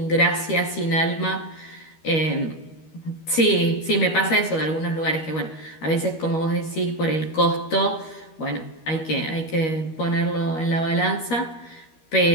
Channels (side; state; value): right; late; 13 ms